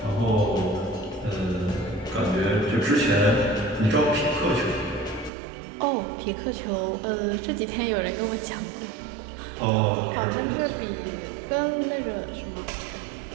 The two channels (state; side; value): drops out; left; at 5.3 s